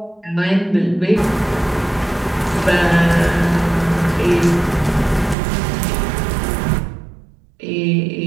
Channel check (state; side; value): drops out; left; at 5.4 s